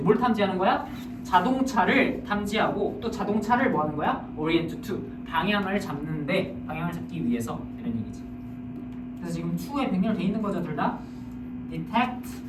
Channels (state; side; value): identical; both; correlation 1.00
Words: 뭘 탐지하는 거야? 자동차를 탐지하고 또 자동차를 뭐 하는 거야? orient to 방향을 잡는데 방향을 잡기 위해서 이런 얘기지. 그래서 지금 to에 병렬돼 있는 거죠, 둘 다. detect